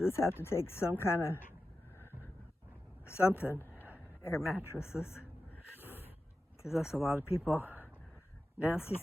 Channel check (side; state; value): both; normal; correlation 0.93